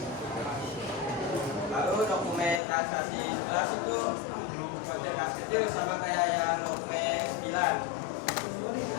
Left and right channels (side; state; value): right; drops out; at 2.6 s